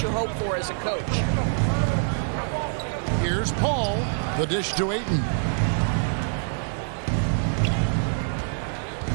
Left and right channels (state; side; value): silent; left; 61 dB below the other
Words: you hope for as a coach. Here's Paul. The dish to Ayton.